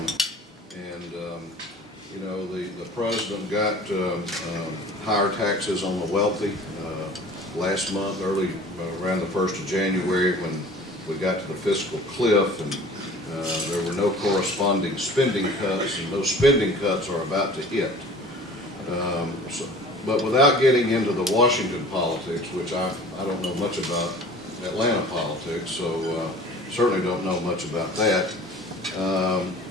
The president got higher taxes on the wealthy last month, around the 1st of January, when we got to the fiscal cliff, and there were no corresponding spending cuts, and those spending cuts are about to hit. But without getting into the Washington politics, which I don't know much about Atlanta politics, so certainly don't know much about that.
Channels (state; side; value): normal; both; correlation 0.45